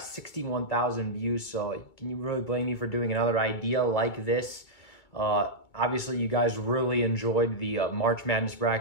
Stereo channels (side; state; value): right; late; 2.2 ms